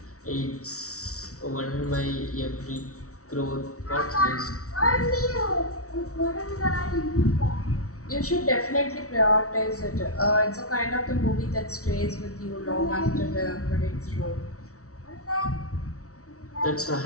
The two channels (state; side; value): late; right; 0.64 ms